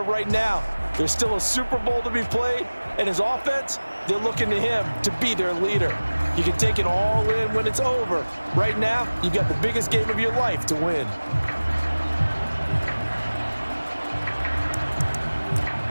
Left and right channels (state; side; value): inverted; both; correlation -1.00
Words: right now. There's still a Super Bowl to be played, and his offense, they're looking to him to be their leader. You can take it all in when it's over. Right now, you've got the biggest game of your life to win.